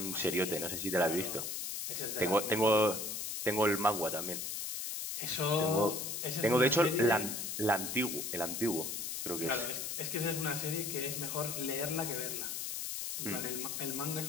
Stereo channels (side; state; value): left; noise; hiss, 4 dB below the sound